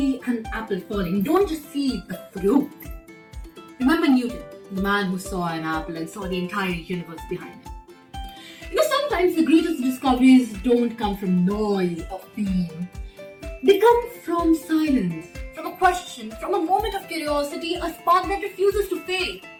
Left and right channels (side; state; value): both; identical; correlation 1.00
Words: an apple falling, don't just see the fruit. Remember Newton, the man who saw an apple and saw the entire universe behind it. Sometimes the greatest discoveries don't come from noise or fame. They come from silence, from a question, from a moment of curiosity, a spark that refuses to fade.